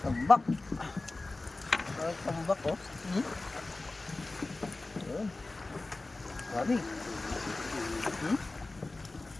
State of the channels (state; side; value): quieter; right; 3.2 dB